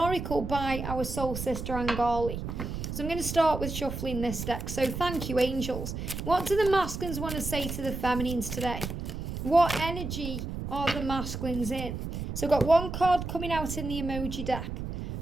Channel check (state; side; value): noise; right; rumble, 6 dB below the sound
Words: by our soul sister Angali. So I'm going to start with shuffling this deck. So thank you, angels. What do the masculines want to say to the feminines today? What energy are the masculines in? So I've got one card coming out in the emoji deck.